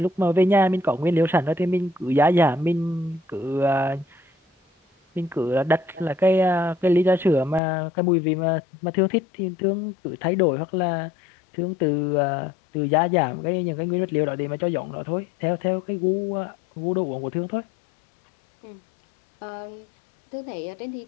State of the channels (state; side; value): drops out; right; at 7.6 s